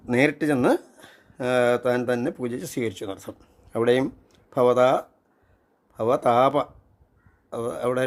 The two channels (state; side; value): identical; both; correlation 1.00